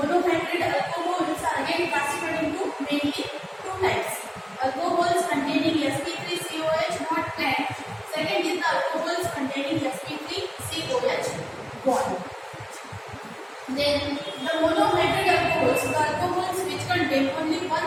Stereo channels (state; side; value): identical; both; correlation 1.00